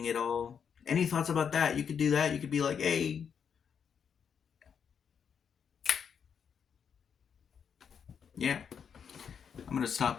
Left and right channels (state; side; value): quieter; right; 7.2 dB